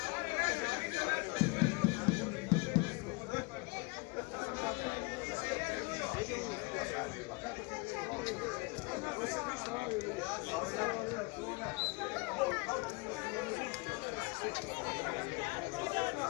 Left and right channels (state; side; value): quieter; right; 27.6 dB